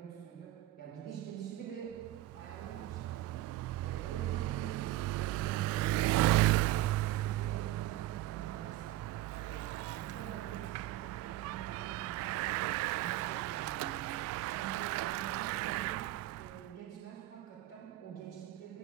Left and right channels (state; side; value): quieter; left; 15.3 dB